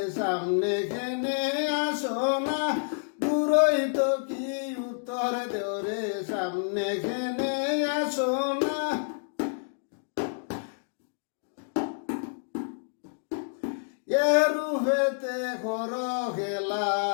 সামনে কেনে আসো না দূরই তো কি উত্তর দৌড়ে সামনে কেনে আসো না রূপেতে করো খেলা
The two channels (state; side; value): silent; right; digital silence